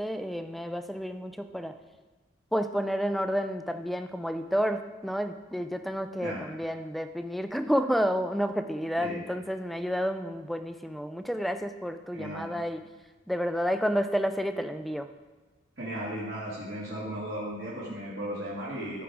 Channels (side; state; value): both; normal; correlation 0.87